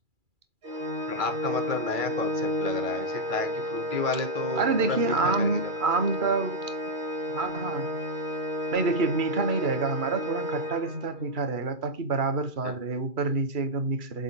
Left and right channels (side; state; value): left; late; 2.3 ms